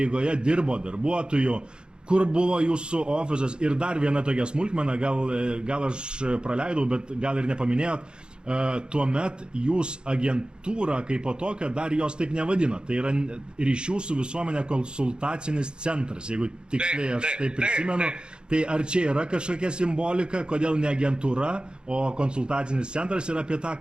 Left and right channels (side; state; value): left; late; 0.050 ms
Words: dirbo darbuotojų? Kur buvo jūsų ofisas? Ir dar viena tokia smulkmena, gal aš praleidau, bet gal ir nepaminėjot. Tuomet jūs agentūrą kaip po tokią dar jos taip nevadino. Tai yra ryšių su visuomenė konsultacinis centras, jeigu tiksliai aš taip prisimenu. Tai ar čia yra kažkokia simbolika, kodėl ne agentūra, o konsultacinis centras ir apie tą